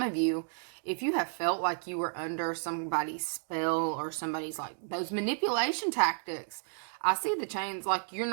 of you, if you have felt like you were under somebody's spell or somebody's like those manipulation tactics, I see the chains, like you're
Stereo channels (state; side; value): silent; left; digital silence